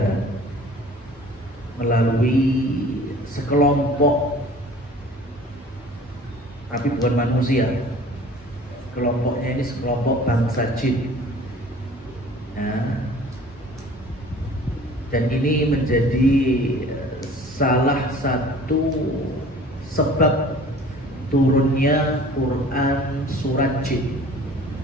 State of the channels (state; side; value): normal; both; correlation 0.47